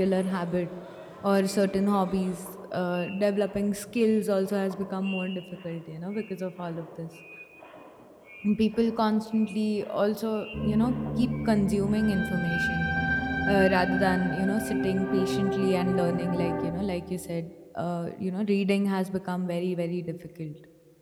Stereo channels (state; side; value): identical; both; correlation 1.00